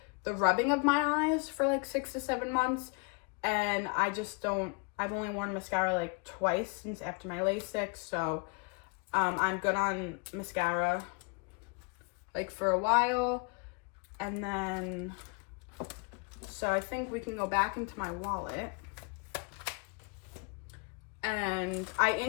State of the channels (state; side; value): quieter; right; 30.2 dB